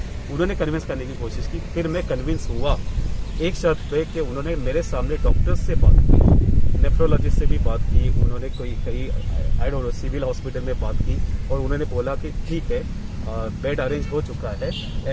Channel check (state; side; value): identical; both; correlation 1.00